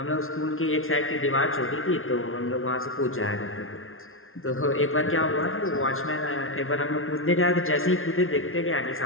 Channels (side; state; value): right; late; 0.61 ms